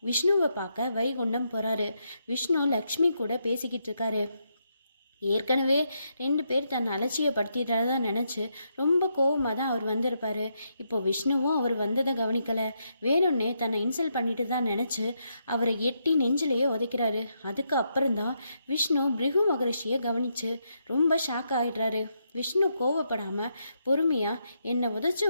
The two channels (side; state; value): both; inverted; correlation -0.80